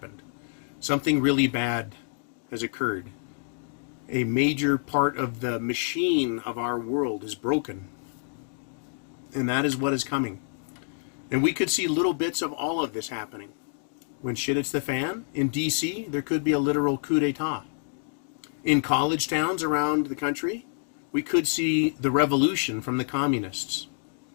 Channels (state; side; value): silent; right; digital silence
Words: Something really bad has occurred. A major part of the machine of our world is broken. And that is what is coming. And we could see little bits of all of this happening. When shit hits the fan, in D.C., there could be a literal coup d'etat. In college towns around the country, we could see the revolution from the communists.